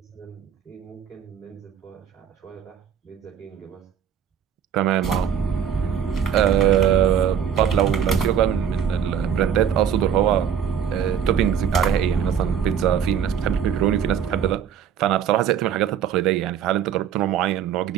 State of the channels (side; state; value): left; quieter; 8.3 dB